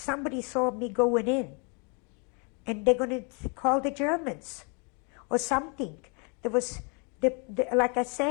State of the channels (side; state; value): right; quieter; 35.5 dB